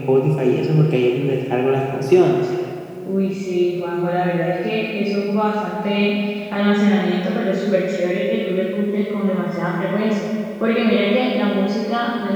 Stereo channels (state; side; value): identical; both; correlation 1.00